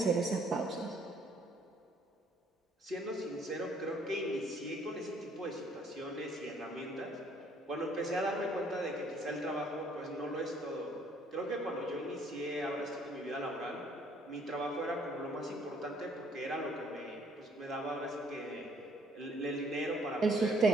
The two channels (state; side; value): normal; both; correlation 0.63